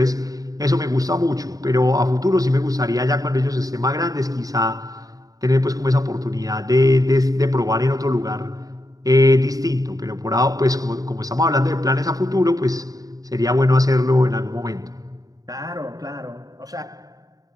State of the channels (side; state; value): left; late; 0.18 ms